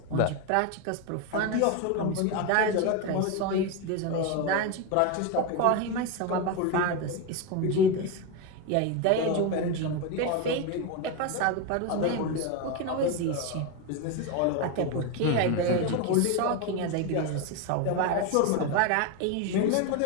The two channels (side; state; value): both; different; correlation 0.03